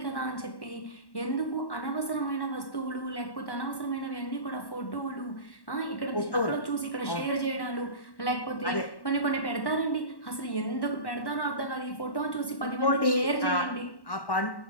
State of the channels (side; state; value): right; late; 1.1 ms